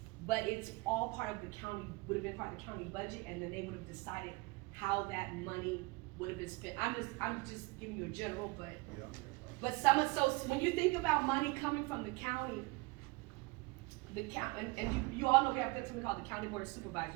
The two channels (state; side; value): quieter; left; 25.4 dB